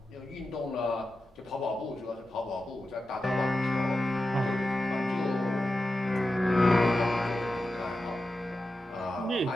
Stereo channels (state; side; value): normal; both; correlation 0.91